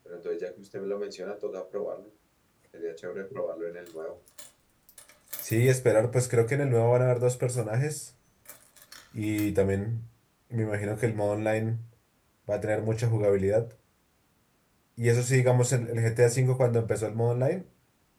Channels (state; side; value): identical; both; correlation 1.00